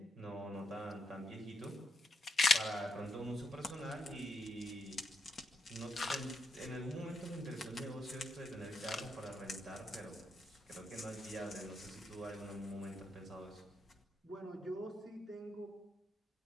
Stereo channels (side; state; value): both; normal; correlation 0.81